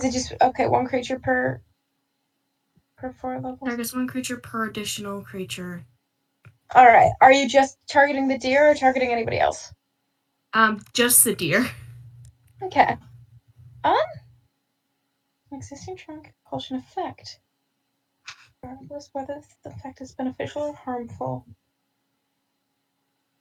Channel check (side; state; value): both; identical; correlation 1.00